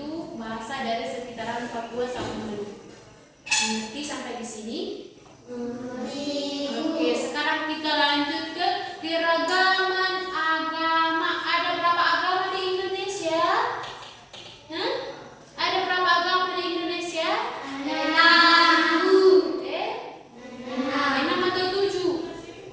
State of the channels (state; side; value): identical; both; correlation 1.00